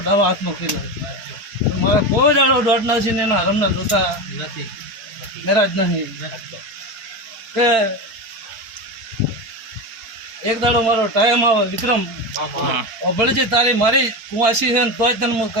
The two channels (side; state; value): left; late; 4.4 ms